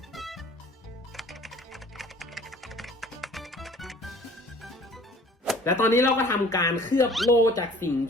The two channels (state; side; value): normal; both; correlation 0.50